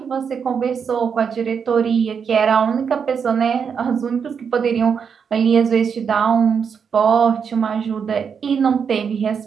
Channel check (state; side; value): quieter; left; 6.7 dB